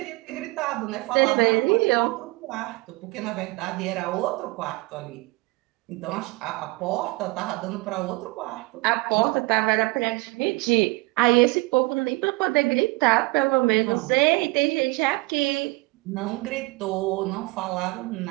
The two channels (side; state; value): left; quieter; 24.1 dB